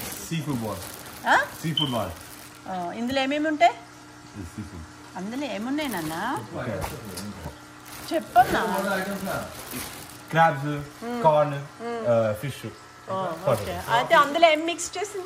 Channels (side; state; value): both; identical; correlation 1.00